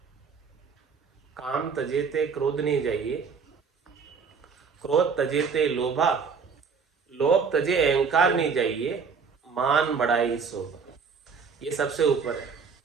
काम तजेते क्रोध नहीं जाइए, क्रोध तजेते लोभा, लोभ तजे अहंकार नहीं जाइए, मान बढ़ाई शोभा। ये सबसे ऊपर है,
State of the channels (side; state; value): left; quieter; 5.6 dB